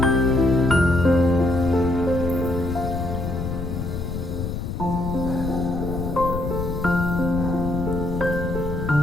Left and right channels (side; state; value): left; noise; rumble, 4 dB below the sound